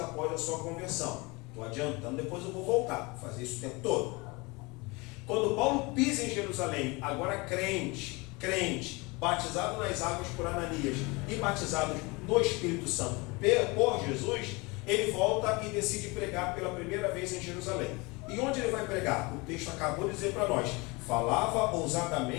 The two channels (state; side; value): quieter; right; 26.1 dB